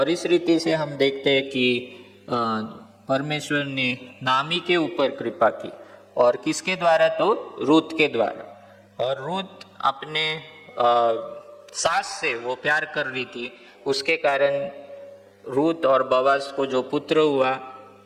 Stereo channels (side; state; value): both; identical; correlation 1.00